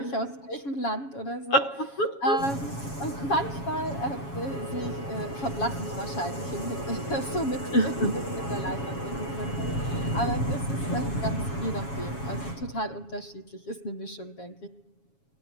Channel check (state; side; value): late; right; 7.2 ms